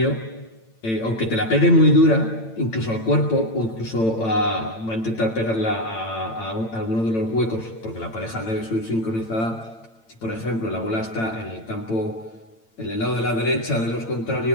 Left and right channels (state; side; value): late; right; 8.9 ms